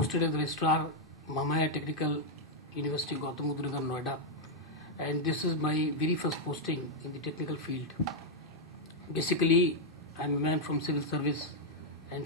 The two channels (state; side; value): normal; both; correlation -0.02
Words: as registrar, Mamaya Technical University, Gautam Buddha Nagar, Noida, and this is my very first posting in the technical field. Basically, I am a man from civil service and